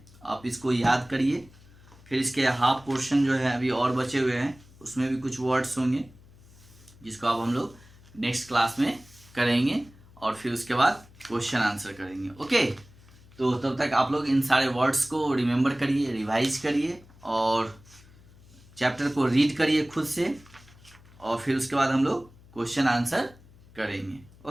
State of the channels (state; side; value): noise; left; hum, 24 dB below the sound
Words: आप इसको याद करिए। फिर इसके हाफ पोर्शन जो है अभी और बचे हुए हैं, उसमें भी कुछ वर्ड्स होंगे जिसको अब हम लोग नेक्स्ट क्लास में करेंगे, और फिर उसके बाद क्वेश्चन आंसर करेंगे। ओके, तो तब तक आप लोग इन सारे वर्ड्स को रिमेंबर करिए, रिवाइज करिए, और चैप्टर को रीड करिए खुद से, और फिर उसके बाद हम लोग क्वेश्चन आंसर करेंगे।